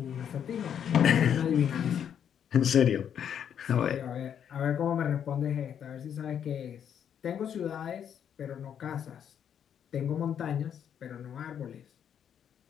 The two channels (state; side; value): quieter; right; 8.7 dB